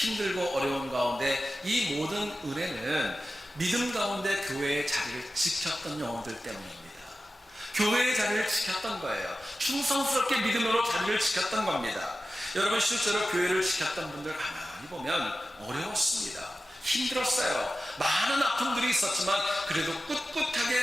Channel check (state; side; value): normal; both; correlation 0.94